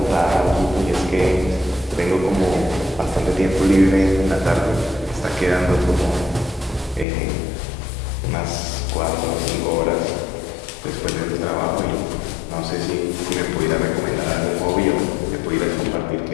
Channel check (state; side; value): drops out; right; at 7.1 s